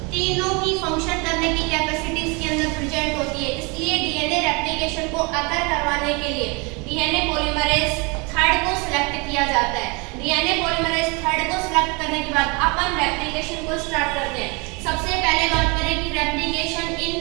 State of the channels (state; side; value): quieter; left; 29.5 dB